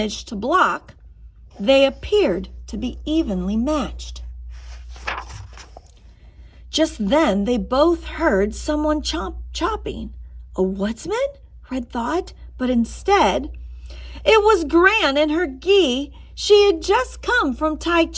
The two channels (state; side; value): identical; both; correlation 1.00